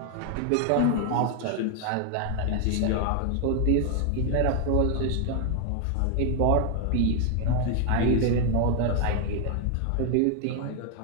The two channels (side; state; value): both; different; correlation 0.00